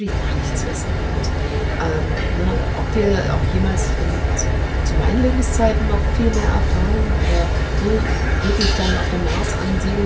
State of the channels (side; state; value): both; identical; correlation 1.00